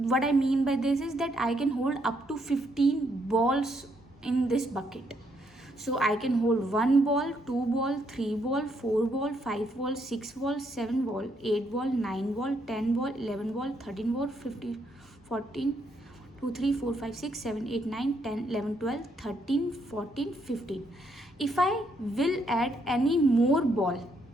what I mean by this is that I can hold up to 15 balls in this bucket. So I can hold 1 ball, 2 ball, 3 ball, 4 ball, 5 ball, 6 ball, 7 ball, 8 ball, 9 ball, 10 ball, 11 ball, 13 ball, 15, 14, 2, 3, 4, 5, 6, 7, 8, 9, 10, 11, 12, 13, 14, 15. If I will add any more ball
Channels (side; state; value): both; normal; correlation 0.74